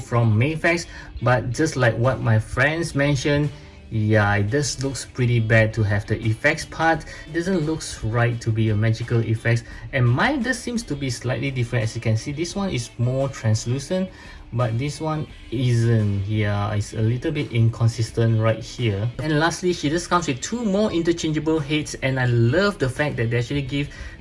Mafex, but just like what my friends mentioned, yeah, it just looks pretty bad to have the effects part. It doesn't look right to be a magical effects, and mine just seems to be slightly different. As you can see, this one is more translucent, but this one isn't. Yeah, it's a little bit inconsistent right here. And lastly, she just comes with two more interchangeable heads, and I love the fact that they actually give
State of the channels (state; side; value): identical; both; correlation 1.00